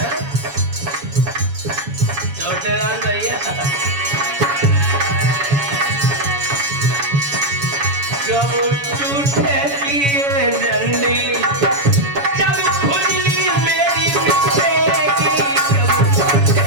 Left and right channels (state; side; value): late; left; 7.1 ms